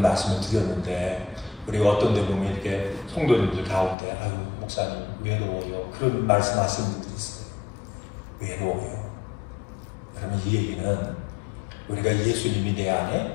드렸는데, 우리가 어떤 데 보면 이렇게 성도님들 가운데 아유 목사님 외로워요, 그런 말씀하시는 분들이 있어요. 외로워요. 그러면 이 얘기는 우리가 예수님이 내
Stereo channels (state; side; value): drops out; right; at 4.0 s